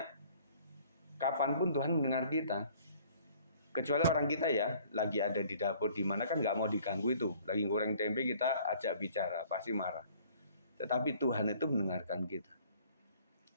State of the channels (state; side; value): inverted; both; correlation -0.55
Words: kapanpun Tuhan mendengar kita. Kecuali orang kita ya, lagi ada di dapur di mana kan nggak mau diganggu itu. Lagi goreng tempe kita ajak bicara, pasti marah. Tetapi Tuhan itu mendengarkan kita.